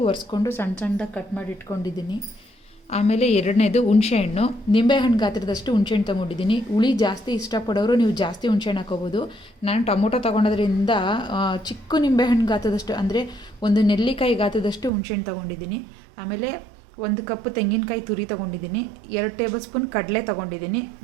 ಒರೆಸ್ಕೊಂಡು ಸಣ್ಣ ಸಣ್ಣದಾಗಿ ಕಟ್ ಮಾಡಿ ಇಟ್ಕೊಂಡಿದ್ದೀನಿ. ಆಮೇಲೆ ಎರಡನೇದು ಹುಣಸೆಹಣ್ಣು, ನಿಂಬೆಹಣ್ಣು ಗಾತ್ರದಷ್ಟು ಹುಣಸೆಹಣ್ಣು ತೊಗೊಂಡಿದ್ದೀನಿ. ಹುಳಿ ಜಾಸ್ತಿ ಇಷ್ಟಪಡೋರು ನೀವು ಜಾಸ್ತಿ ಹುಣಸೆಹಣ್ಣು ಹಾಕೋಬೋದು. ನಾನು ಟೊಮೊಟೊ ತೊಗೊಳೋದ್ರಿಂದ ಚಿಕ್ಕ ನಿಂಬೆಹಣ್ಣು ಗಾತ್ರದಷ್ಟು ಅಂದರೆ ಒಂದು ನೆಲ್ಲಿಕಾಯಿ ಗಾತ್ರದಷ್ಟು ಹುಣಸೆಹಣ್ಣು ತೊಗೊಂಡಿದ್ದೀನಿ. ಆಮೇಲೆ 1 ಕಪ್ ತೆಂಗಿನಕಾಯಿ ತುರಿ ತೊಗೊಂಡಿದ್ದೀನಿ, 2 ಟೇಬಲ್ ಸ್ಪೂನ್ ಕಡಲೆ ತೊಗೊಂಡಿದ್ದೀನಿ,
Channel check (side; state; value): left; drops out; at 14.9 s